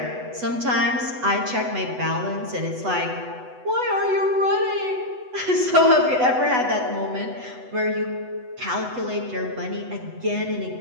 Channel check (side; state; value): left; late; 8.0 ms